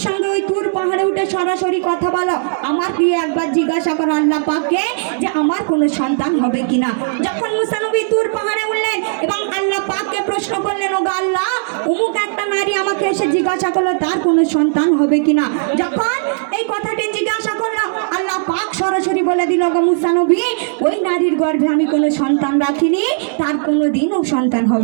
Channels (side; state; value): left; silent; digital silence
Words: সঙ্গে ওই তুর পাহাড়ে উঠে সরাসরি কথা বলো, আমার গিয়ে একবার জিজ্ঞাসা করো আল্লাহ পাককে যে আমার কোনো সন্তান হবে কিনা। যখন মুসা নবী তুর পাহাড়ে উঠলেন এবং আল্লাহ পাককে প্রশ্ন করলেন, ও আল্লাহ, অমুক একটা নারী আমাকে এসে জিজ্ঞাসা করলো তার কোনো সন্তান হবে কিনা। যখন এই কথাটি জিজ্ঞাসা করলো, আল্লাহ পাক সরাসরি বলে দিল, গো মুসা নবী, ওই নারীর গর্ভে আমি কোনো সন্তান রাখিনি, তার কোনো দিনও সন্তান